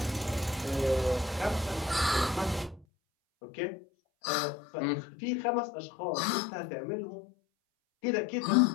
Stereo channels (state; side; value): drops out; right; at 2.9 s